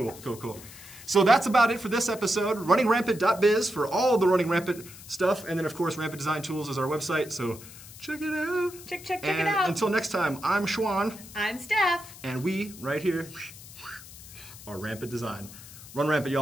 So that's about it for this episode. RunningRampant.biz for all the Running Rampant stuff, and then, of course, Rampant Design Tools is our website, so check it out. Check it out. Until next time, I'm Schwan. I'm Steph. And we, right here, are Rampant Design. Run rampant,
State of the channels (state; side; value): noise; left; hiss, 17 dB below the sound